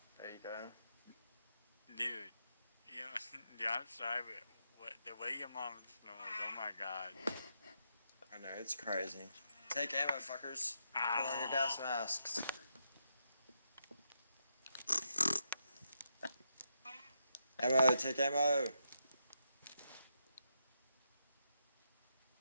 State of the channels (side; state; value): both; inverted; correlation -0.82